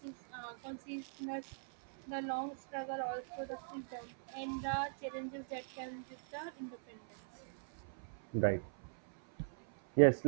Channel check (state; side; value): silent; left; 51 dB below the other